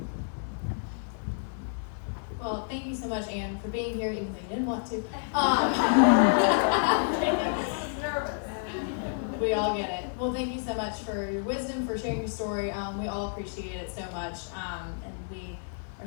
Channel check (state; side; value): silent; right; digital silence